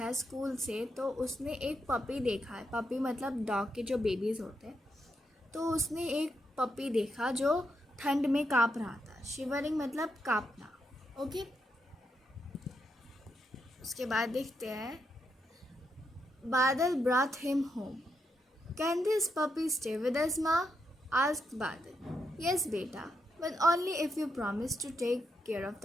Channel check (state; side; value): normal; both; correlation 0.81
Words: स्कूल से तो उसने एक पपी देखा है। पपी मतलब डॉग के जो बेबीज़ होते हैं। तो उसने एक पपी देखा जो ठंड में काँप रहा था। शिवरिंग मतलब काँपना। ओके, उसके बाद देखते हैं। बादल brought him home. Can this puppy stay with us, Ma? asked Badal. Yes, beta, but only if you promise to take care of